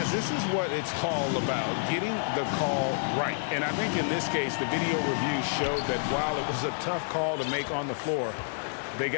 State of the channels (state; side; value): silent; right; digital silence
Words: this is what it's all about, getting the call right. And I think in this case, the video review showed that while it was a tough call to make on the floor, they